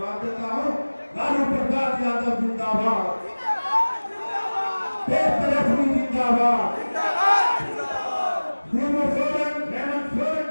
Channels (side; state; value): both; inverted; correlation -1.00